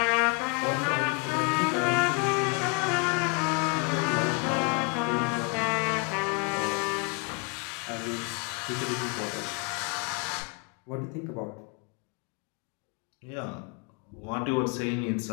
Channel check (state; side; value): quieter; right; 32.5 dB